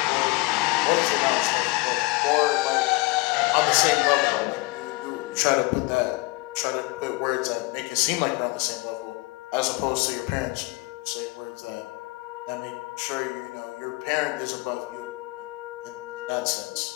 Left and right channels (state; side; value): quieter; right; 23.2 dB